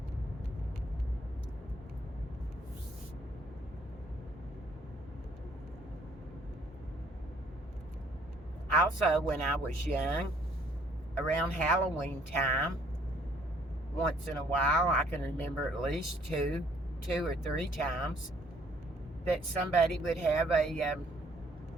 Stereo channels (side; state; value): both; normal; correlation 0.62